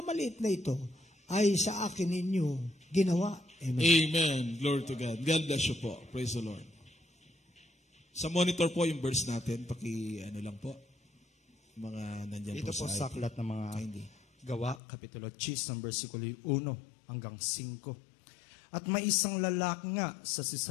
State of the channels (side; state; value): right; drops out; at 14.8 s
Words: na ito, ay sa akin ninyo ginawa. Amen. Amen. Glory to God. God bless you po. Praise the Lord. Sa monitor po yung verse natin, lang po, mga nandyan Ito po sa aklat ng mga Gawa, Kapitulo 10, versikulo 1 hanggang 5. At may isang lalaki nga sa